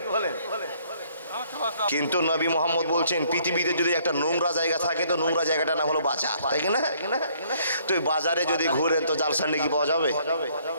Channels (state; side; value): inverted; both; correlation -0.64